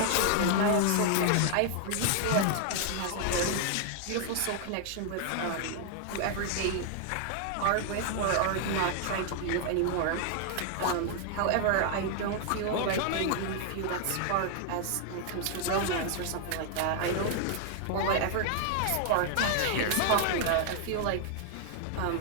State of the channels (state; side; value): different; both; correlation 0.00